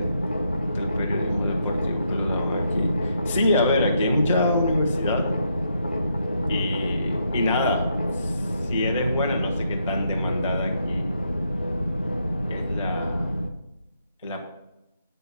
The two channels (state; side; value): inverted; both; correlation -0.78